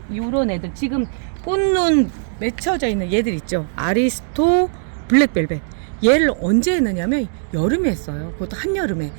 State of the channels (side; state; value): left; silent; digital silence